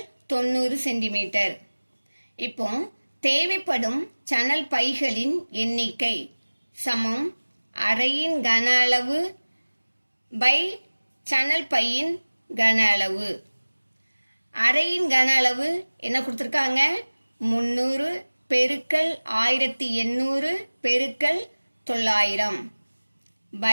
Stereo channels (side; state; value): both; inverted; correlation -1.00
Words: 90 சென்டிமீட்டர். இப்போ தேவைப்படும் சணல் பைகளின் எண்ணிக்கை சமம் அறையின் கன அளவு பை சணல் பையின் கன அளவு. அறையின் கன அளவு என்ன கொடுத்துருக்காங்க? 300 பெருக்கல் 1800 பெருக்கல் 900